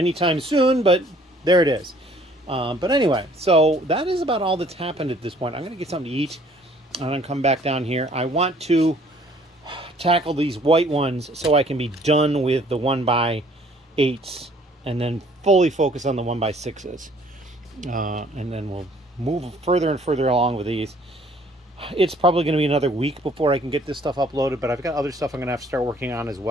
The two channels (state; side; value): normal; both; correlation 0.58